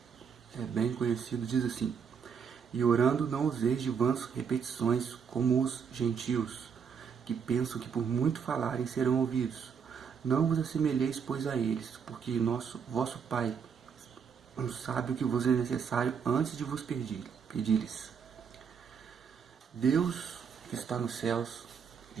É bem conhecido, diz assim: E orando não useis de vãs repetições como os gentios, que pensam que por muito falarem serão ouvidos. Não vos assemelheis, pois, a eles, porque vosso Pai sabe o que vos é necessário antes de vos pedir-lhes. Deus que está nos céus,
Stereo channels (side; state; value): left; quieter; 6.7 dB